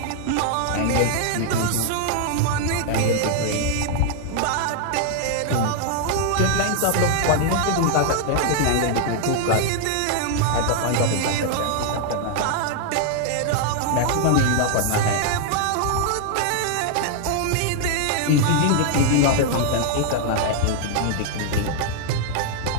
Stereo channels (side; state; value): both; different; correlation 0.00